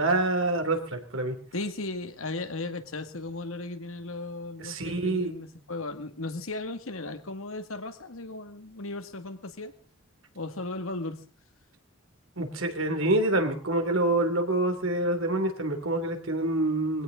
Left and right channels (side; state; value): both; normal; correlation 0.02